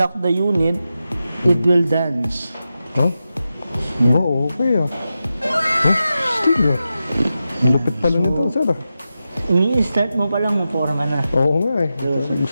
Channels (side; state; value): both; inverted; correlation -0.91